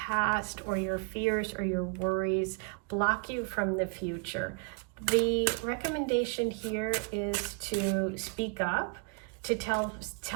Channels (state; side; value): quieter; left; 32.7 dB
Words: or your fears or your worries block you from the future. The recommendation here is to speak up, to